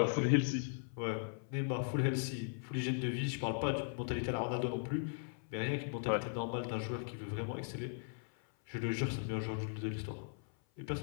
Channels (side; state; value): right; silent; 52 dB below the other